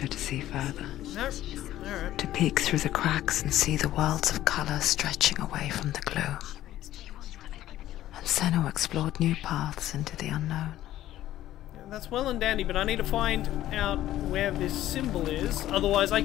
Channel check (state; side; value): quieter; right; 13.6 dB